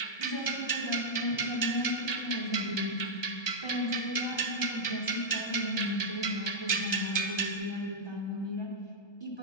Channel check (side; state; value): right; late; 1.3 ms